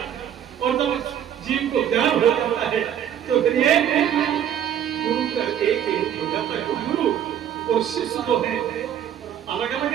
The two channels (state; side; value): quieter; left; 9.9 dB